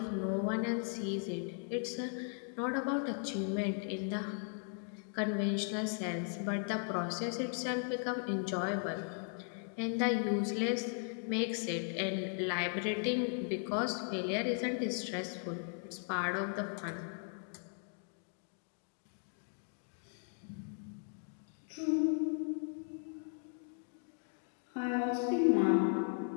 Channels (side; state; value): right; silent; 53 dB below the other